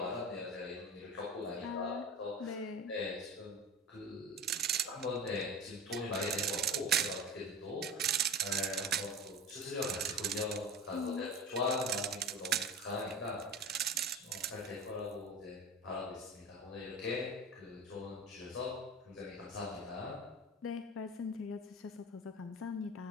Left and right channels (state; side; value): normal; both; correlation 0.30